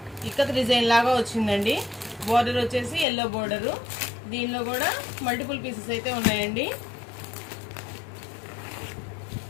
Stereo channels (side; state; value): right; drops out; at 3.1 s